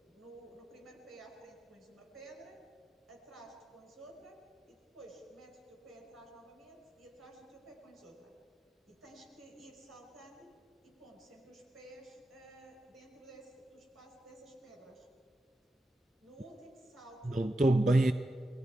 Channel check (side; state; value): both; normal; correlation 0.88